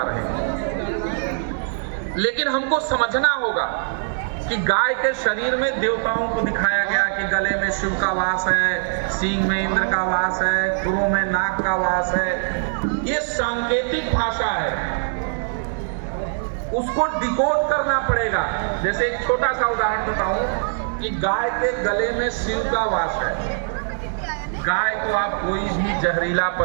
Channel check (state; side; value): silent; left; 60 dB below the other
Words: रहे हैं, लेकिन हमको समझना होगा कि गाय के शरीर में देवताओं को दिखाया गया कि गले में शिव का वास है, सींग में इंद्र का वास है, खुरों में नाग का वास है। ये सांकेतिक भाषा है, उसको डिकोड करना पड़ेगा। जैसे एक छोटा सा उदाहरण बताऊं कि गाय के गले में शिव का वास है। गाय को आप कोई भी जहरीला